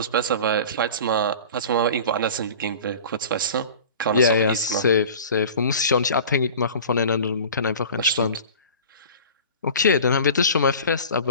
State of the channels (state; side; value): inverted; both; correlation -0.40